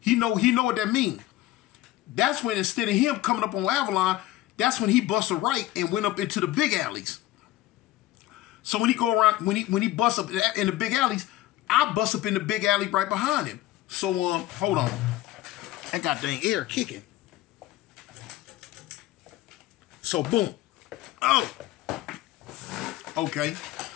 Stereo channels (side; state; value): right; quieter; 15.5 dB